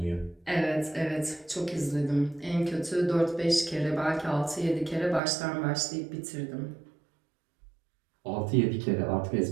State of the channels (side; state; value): left; drops out; at 5.2 s